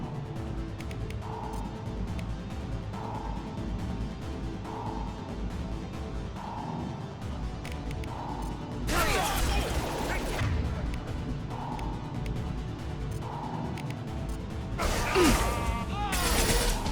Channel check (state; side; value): identical; both; correlation 1.00